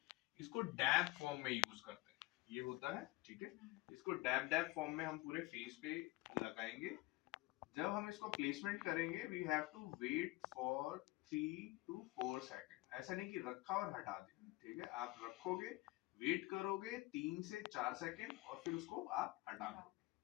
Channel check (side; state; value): right; quieter; 21.0 dB